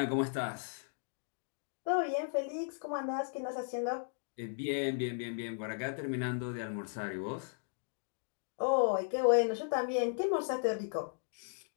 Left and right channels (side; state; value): right; silent; digital silence